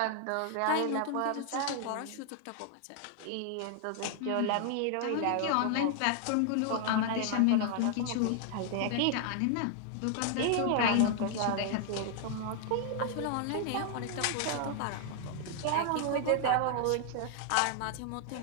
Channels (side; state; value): both; different; correlation 0.00